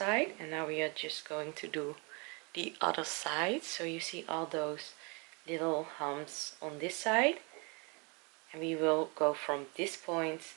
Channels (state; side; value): quieter; left; 31.3 dB